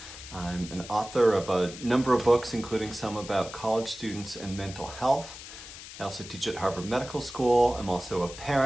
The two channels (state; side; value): noise; left; hiss, 13 dB below the sound